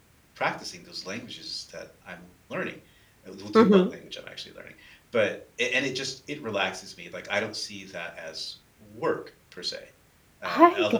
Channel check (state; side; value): identical; both; correlation 1.00